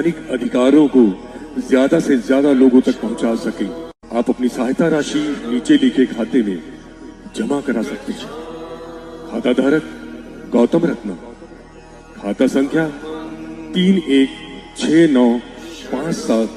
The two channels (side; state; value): both; identical; correlation 1.00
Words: अधिकारों को ज्यादा से ज्यादा लोगों तक पहुंचा सकें। आप अपनी सहायता राशि नीचे लिखे खाते में जमा करा सकते हैं। खाता धारक गौतम रत्ना, खाता संख्या